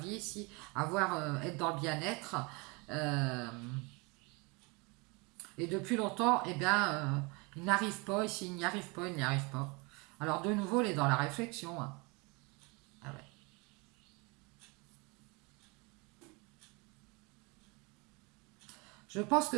ici, être dans le bien-être. Euh, et depuis longtemps, eh bien, il n'arrive pas ici, il n'y arrive pas, il n'y arrive pas. Alors de nouveau, il est dans la réflexion. Hein. Ah ouais. Je pense que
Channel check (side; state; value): left; quieter; 28.5 dB